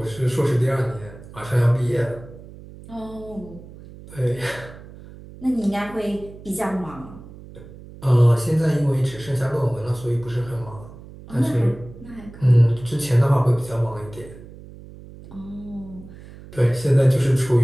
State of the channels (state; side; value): noise; right; hum, 18 dB below the sound